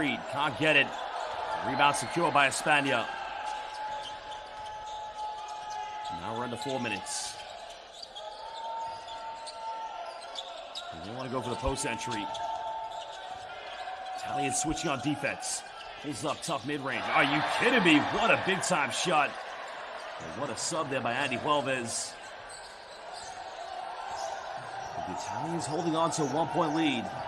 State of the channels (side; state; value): both; identical; correlation 1.00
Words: can't get it. Rebound secured by España. Now we're into 4 minutes. They want to go for the post entry. Italian switching on defense. Pulls up, tough mid-range. Are you kidding me? What a big-time shot. And what a sub there by Andy Huelvas. The Italians holding on to a 1 point lead.